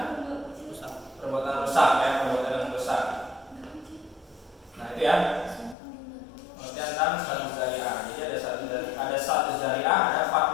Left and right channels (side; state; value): right; drops out; at 5.8 s